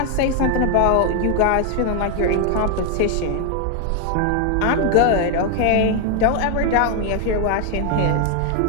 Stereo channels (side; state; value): both; different; correlation 0.00